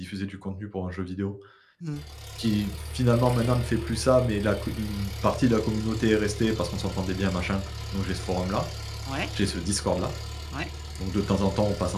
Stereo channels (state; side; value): identical; both; correlation 1.00